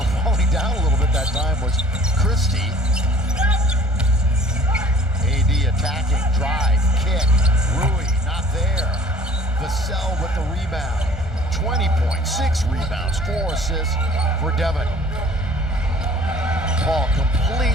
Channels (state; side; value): normal; both; correlation 0.51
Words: falling down a little bit that time was Christie. AD attacking, drive, kick, Rui not there. Vassell with the rebound. 20 points, 6 rebounds, 4 assists for Devin. Paul